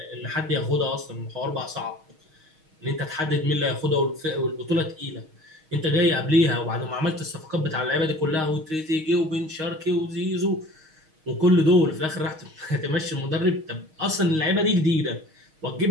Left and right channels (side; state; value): left; late; 6.4 ms